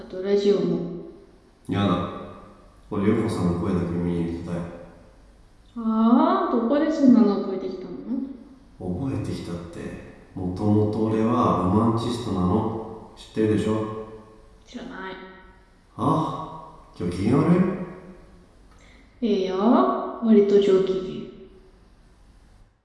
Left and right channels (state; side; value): identical; both; correlation 1.00